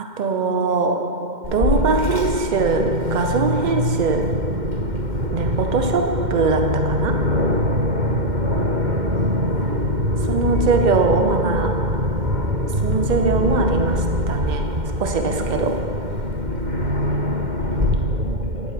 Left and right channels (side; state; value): left; late; 2.1 ms